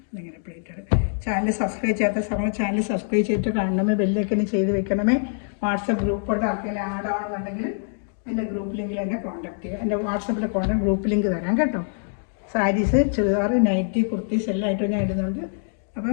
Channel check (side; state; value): right; silent; digital silence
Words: ഇങ്ങനെ പ്ലേറ്റ് എടുക്കും. ചാനൽ സബ്സ്ക്രൈബ് ചെയ്യാത്ത സമയം ചാനൽ സബ്സ്ക്രൈബ് ചെയ്തിട്ട് കാണണമേ, ബെല്ലൈക്കന് ചെയ്ത് വെക്കണമേ. വാട്സപ്പ് ഗ്രൂപ്പോട്ട് ആർക്കെങ്കിലും ആഡ് ആവണമെന്നുണ്ടെങ്കിൽ എൻ്റെ ഗ്രൂപ്പ് ലിങ്കിൽ എന്നെ കോൺടാക്ട് ചെയ്യുക. എൻ്റെ വാട്സപ്പിൽ ഗ്രൂപ്പ് ലിങ്ക് തരാം കേട്ടോ. സാരീസ്, ചുരിദാർ, നൈറ്റി, കുർത്തീസ് എല്ലാം ആയിട്ടും ഞാൻ ഇടുന്നുണ്ട്.